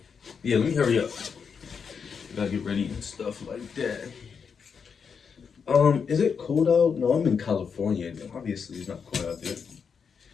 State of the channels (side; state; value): right; quieter; 6.2 dB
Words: yeah, let me hurry up. Gotta get ready and stuff like that. Is it cold out? No, I'm in California. Obviously, it's not cold out there.